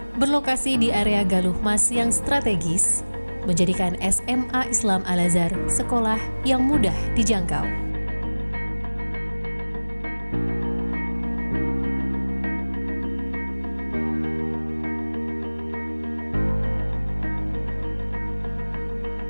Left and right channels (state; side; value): inverted; both; correlation -1.00